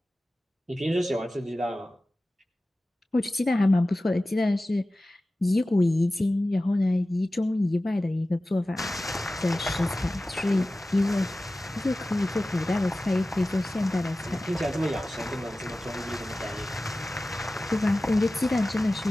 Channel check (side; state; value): both; normal; correlation 0.96